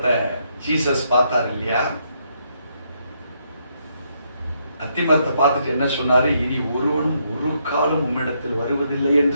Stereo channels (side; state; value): both; inverted; correlation -0.76